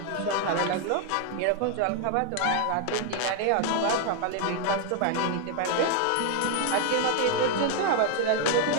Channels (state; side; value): different; both; correlation 0.00